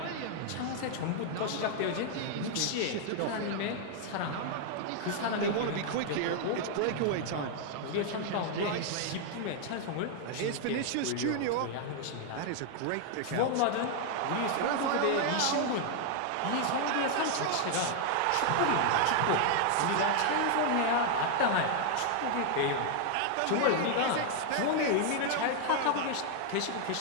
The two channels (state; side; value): different; both; correlation 0.00